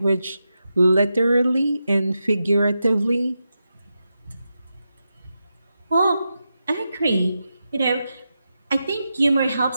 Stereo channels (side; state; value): both; inverted; correlation -0.88